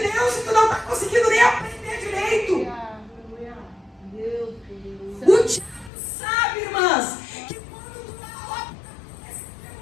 Deus e tu não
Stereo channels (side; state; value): right; drops out; at 5.9 s